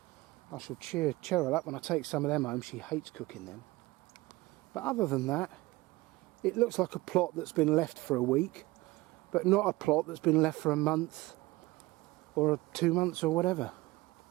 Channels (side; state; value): left; quieter; 20.3 dB